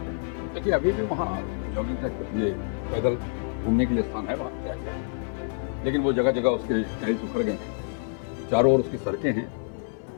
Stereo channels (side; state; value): right; silent; 59 dB below the other